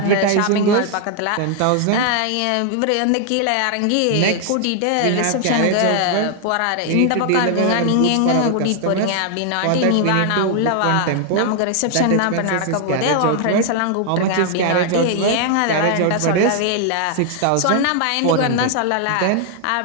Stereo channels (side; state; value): both; different; correlation 0.00